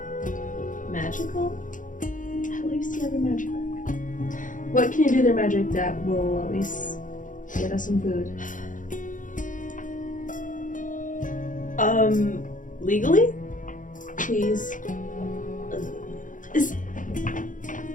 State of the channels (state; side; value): late; right; 0.38 ms